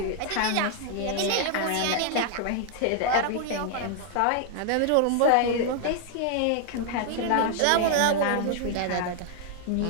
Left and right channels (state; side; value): different; both; correlation 0.00